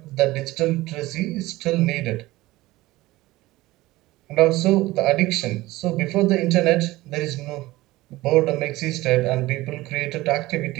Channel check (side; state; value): left; quieter; 18.5 dB